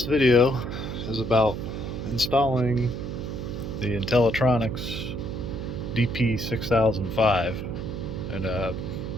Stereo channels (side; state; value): right; noise; hum, 6 dB below the sound